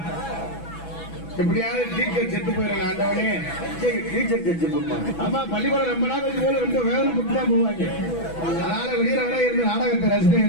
எப்படியாவது டீச்சர் செத்து போயிடலாம், ஆண்டவனே டீச்சர் செத்து போடுவாங்க. ஆமா பள்ளிக்கூடம் ரொம்ப நாள் கழிச்சு போல ரொம்ப வேதனை பட்டு தான் போவாங்க. அதனால வெளியில வர இருந்து நாடகத்தை ரசிகன்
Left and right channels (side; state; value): right; late; 6.1 ms